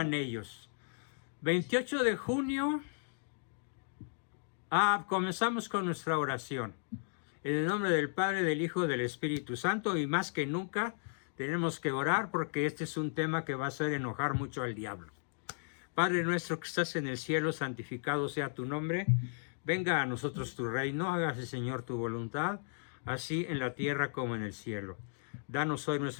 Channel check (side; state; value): right; silent; digital silence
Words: ellos. 28 de junio, comenzamos con nuestra oración. En el nombre del Padre, del Hijo, del Espíritu Santo, y más que nunca tenemos que orar porque este es un tema que va a hacer enojar mucho al diablo. Padre nuestro que estás en el cielo, santificado sea tu nombre. Venga a nosotros tu reino, hágase Señor tu voluntad, así en la tierra como en el cielo. Danos hoy